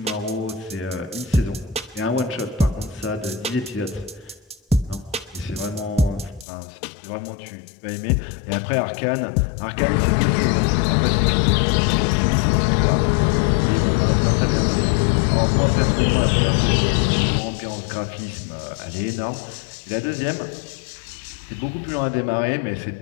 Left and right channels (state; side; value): drops out; right; at 6.5 s